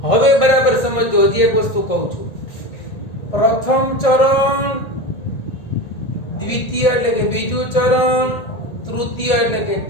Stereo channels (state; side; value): late; right; 1.9 ms